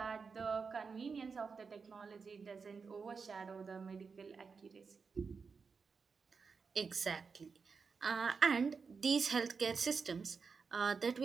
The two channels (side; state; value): left; quieter; 5.2 dB